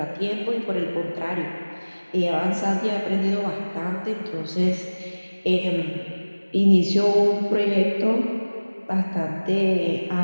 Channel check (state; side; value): inverted; both; correlation -1.00